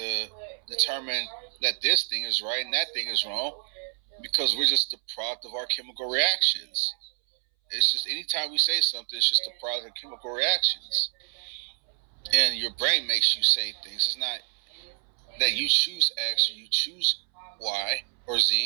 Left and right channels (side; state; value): left; silent; 60 dB below the other